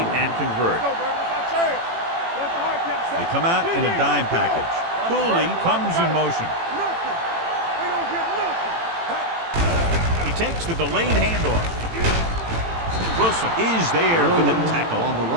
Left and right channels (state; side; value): late; left; 18 ms